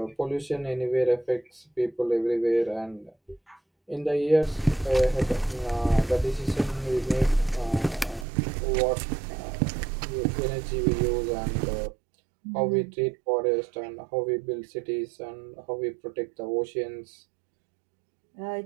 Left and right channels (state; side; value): drops out; left; at 8.2 s